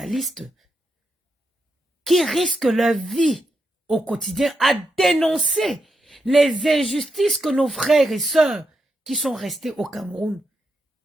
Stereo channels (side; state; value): both; normal; correlation 0.84